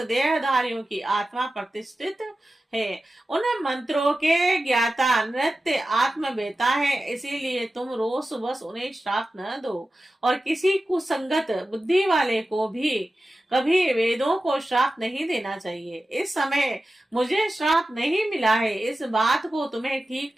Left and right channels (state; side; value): normal; both; correlation 0.94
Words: की आत्मा प्रतिष्ठित है। उन मंत्रों के ज्ञाता नृत्य आत्मवेता है, इसीलिए तुम रोष बस उन्हें श्राप न दो और किसी कुसंगत बुद्धि वाले को भी कभी वेदों को श्राप नहीं देना चाहिए। इस समय मुझे श्राप नहीं मिला है, इस बात को तुम्हें ठीक